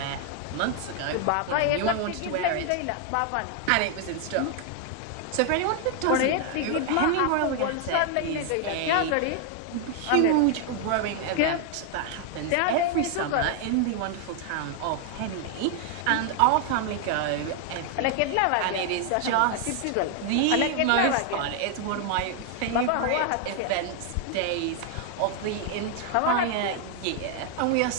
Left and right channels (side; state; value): both; different; correlation 0.00